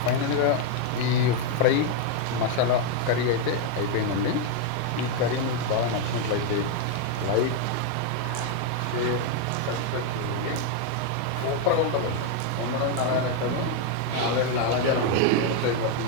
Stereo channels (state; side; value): different; both; correlation 0.01